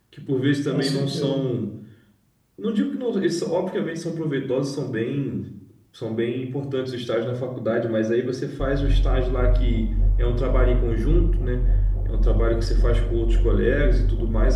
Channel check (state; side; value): identical; both; correlation 1.00